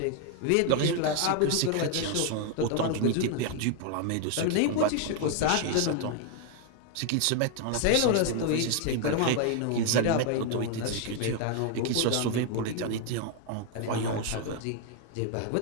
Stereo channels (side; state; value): both; different; correlation 0.00